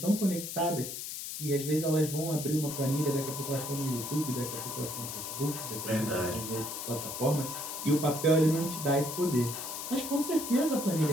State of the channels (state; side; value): noise; left; hiss, 7 dB below the sound